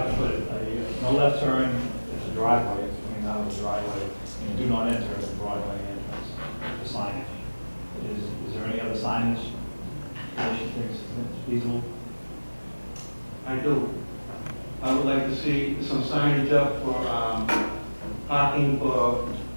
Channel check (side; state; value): both; inverted; correlation -1.00